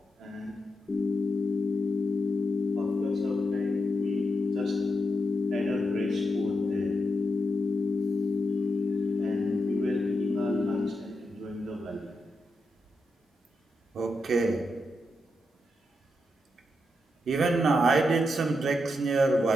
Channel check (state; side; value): normal; both; correlation 0.85